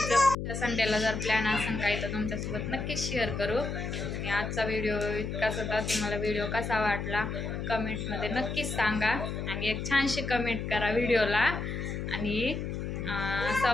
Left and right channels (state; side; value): noise; left; hum, 4 dB below the sound